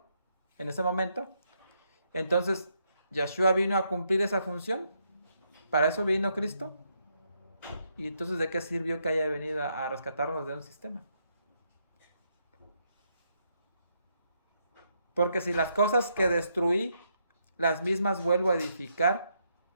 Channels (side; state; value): both; inverted; correlation -0.77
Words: en ese momento, entonces Yeshua vino a cumplir esa función. Para eso vino Cristo. Y entonces, ¿de qué sirvió que haya venido a rescatarnos de un sistema? Porque si las cosas que destruí, las mismas vuelvo a edificar,